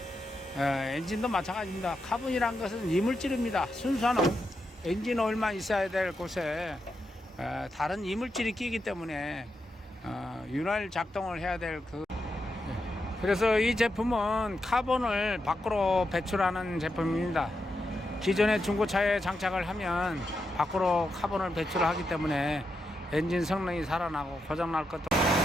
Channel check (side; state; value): both; normal; correlation 0.85